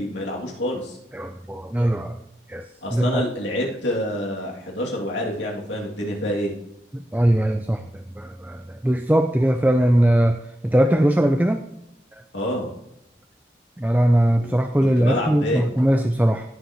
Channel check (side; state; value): both; normal; correlation 0.88